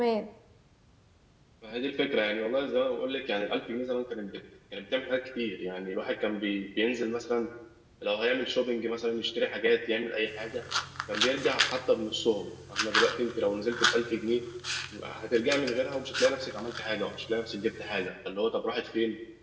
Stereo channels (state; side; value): identical; both; correlation 1.00